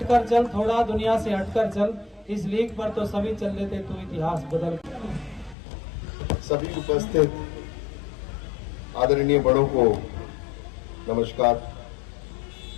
चल, थोड़ा दुनिया से हटकर चल, इस लीग पर तो सभी चल लेते, तू इतिहास बदल। सभी उपस्थित आदरणीय बड़ों को नमस्कार,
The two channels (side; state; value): right; drops out; at 5.6 s